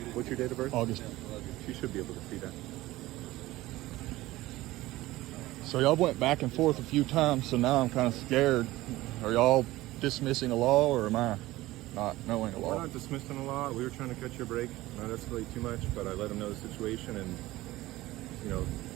What's your date of birth? August. You should be able to see that. So y'all went back and forth a few times, so now I'm kind of scared. Are y'all dismissing a law, or am I not knowing a We're law? not dismissing the law. We were trying to catch your break. Not escalate too much, but I let him know the situation, and you know,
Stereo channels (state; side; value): quieter; left; 17.6 dB